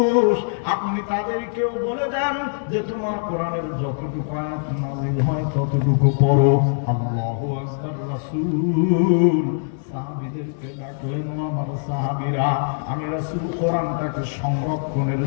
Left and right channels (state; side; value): silent; right; digital silence